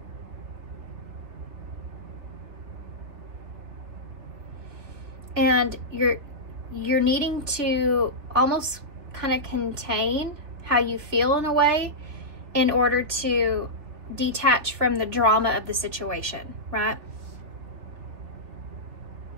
And you're needing to almost kind of contain how you feel in a way in order to detach from the drama of the situation, right?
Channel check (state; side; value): late; left; 3.6 ms